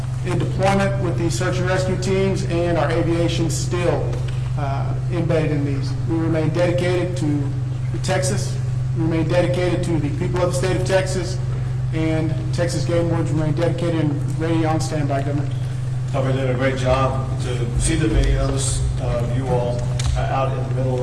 deployment with these search and rescue teams, and our aviation still embedded in these. We remain dedicated to Texas, we remain dedicated to the people of the state of Texas, and Texas Game Wardens remain dedicated and ready on standby, Governor. You're doing a great job. To see the videos of you all out in the middle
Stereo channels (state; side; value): identical; both; correlation 1.00